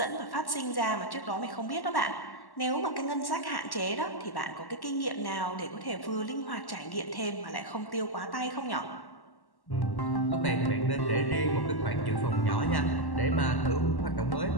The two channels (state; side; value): late; right; 1.1 ms